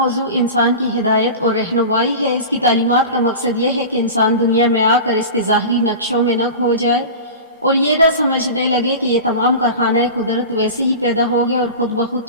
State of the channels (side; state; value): both; inverted; correlation -0.31